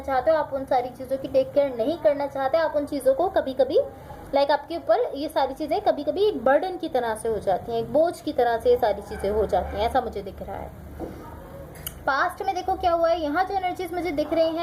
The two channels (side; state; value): both; identical; correlation 1.00